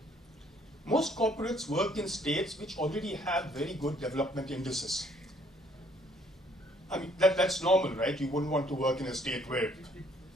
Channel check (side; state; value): both; normal; correlation 0.63